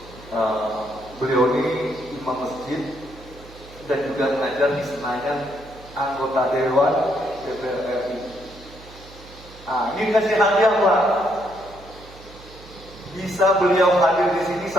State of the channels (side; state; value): right; noise; hum, 20 dB below the sound